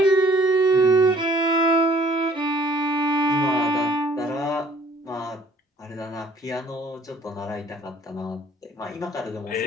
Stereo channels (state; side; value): normal; both; correlation 0.57